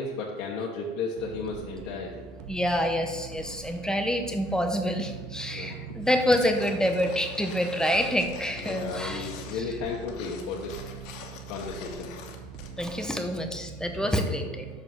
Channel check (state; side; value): normal; both; correlation 0.67